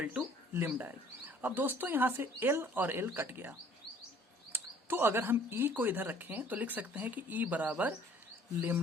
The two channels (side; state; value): both; normal; correlation 0.55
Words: to lambda L. अब दोस्तों यहाँ से L और L कट गया, तो अगर हम E को इधर रखें तो लिख सकते हैं कि E बराबर